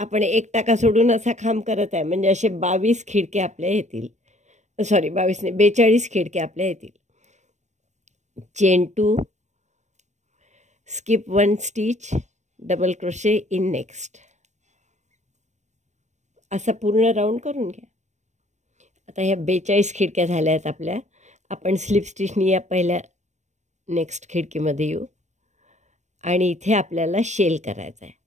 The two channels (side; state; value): left; late; 0.34 ms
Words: 1 टाका सोडून असा खांब करत आहे, म्हणजे असे 22 खिडके आपल्या येतील। सॉरी, 22 नाही, 42 खिडके आपल्या येतील। Chain 2, skip 1 stitch, double crochet in next, असा पूर्ण राऊंड करून घ्या। आता ह्या 42 खिडक्या झाल्या आहेत आपल्या। आपण स्लिप स्टिचनी या पहिल्या नेक्स्ट खिडकीमध्ये येऊ आणि इथे आपल्याला शेल करायचा आहे।